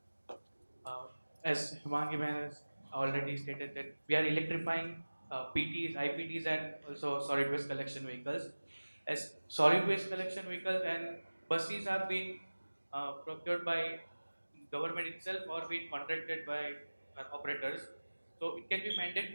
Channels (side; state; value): both; inverted; correlation -1.00